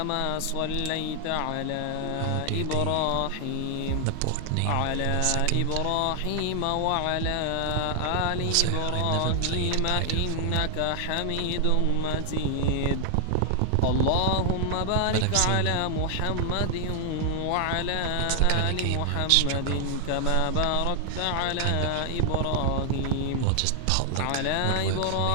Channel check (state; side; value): different; both; correlation 0.00